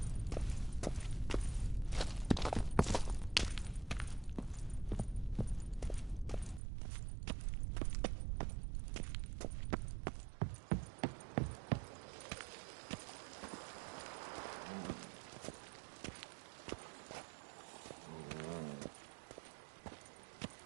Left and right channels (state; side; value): drops out; left; at 6.6 s